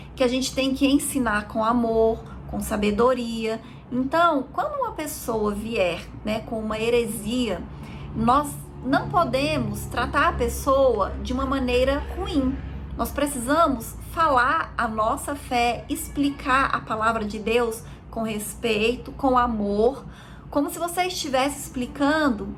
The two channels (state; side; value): identical; both; correlation 1.00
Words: que a gente tem que ensinar com amor, com sabedoria. Então, quando uma pessoa vier, né, com uma heresia, nós não podemos tratar a pessoa de uma maneira ruim. Nós precisamos falar a nossa fé, explicar a palavra de Deus com respeito, com amor, como se você estivesse explicando